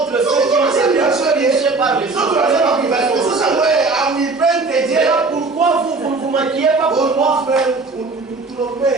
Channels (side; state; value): left; quieter; 3.8 dB